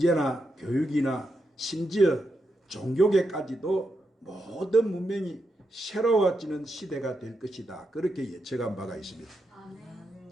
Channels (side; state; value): both; normal; correlation 0.85